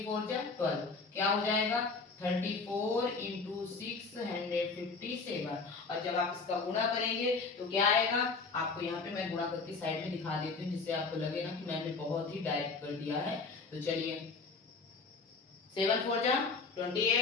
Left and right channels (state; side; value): quieter; right; 4.3 dB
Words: 4 जा 12, क्या हो जाएगा 34 इंटू 657। और जब आप इसका गुणा करेंगे तो क्या आएगा, आपको यहाँ पे मैं गुणा करके साइड में दिखा देती हूँ जिससे आपको लगे ना कि मैंने बहुत ही डायरेक्ट कर दिया है। तो चलिए 7 4 जा